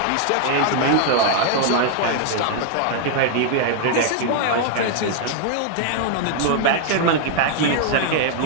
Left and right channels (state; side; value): different; both; correlation 0.00